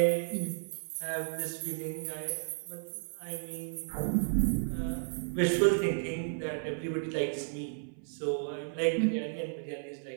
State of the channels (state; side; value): silent; left; 56 dB below the other